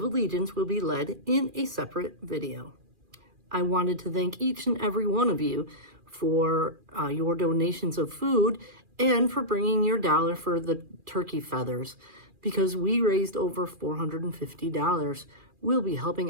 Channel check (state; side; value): late; left; 2.4 ms